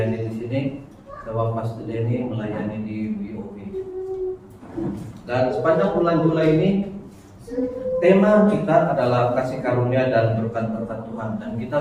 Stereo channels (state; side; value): identical; both; correlation 1.00